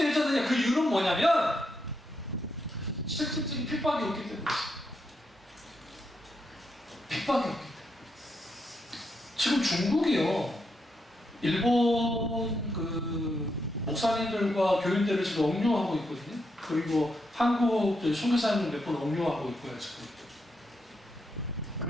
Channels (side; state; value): both; normal; correlation 0.82